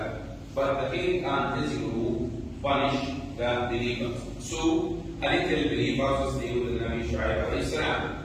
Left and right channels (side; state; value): both; identical; correlation 1.00